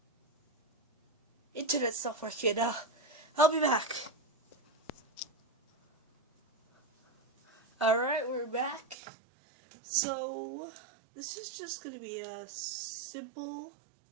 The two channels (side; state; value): left; drops out; at 9.0 s